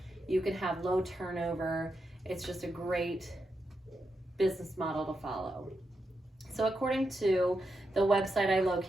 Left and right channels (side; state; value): both; normal; correlation 0.86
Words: you can have low turnover. It's just a great business model to follow. So according to the website I